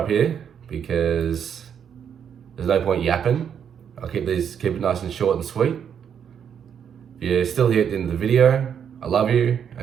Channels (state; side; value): quieter; left; 8.1 dB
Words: here because there's no point yapping. I'll keep it nice and short and sweet. If you're still here at the end of the video, I love you,